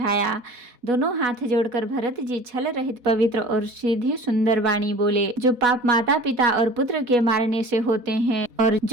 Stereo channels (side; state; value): left; late; 4.1 ms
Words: दोनों हाथ जोड़कर भरत जी छल रहित पवित्र और सीधी सुंदर वाणी बोले। जो पाप माता पिता और पुत्र के मारने से होते हैं, और